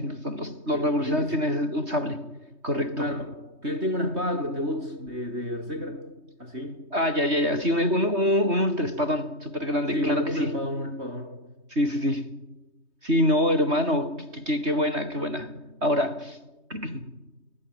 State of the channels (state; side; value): late; left; 3.2 ms